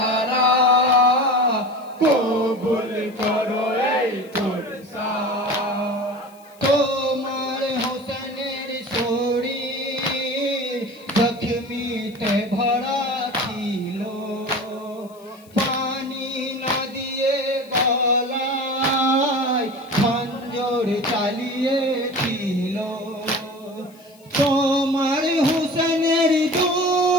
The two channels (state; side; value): noise; left; hiss, 27 dB below the sound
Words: কবুল করো এই পুরসা তোমার হোসেনের শরীর জখমিতে ভরা ছিল পানি না দিয়ে গলায় খঞ্জর চালিয়েছিল তোমার হোসেনের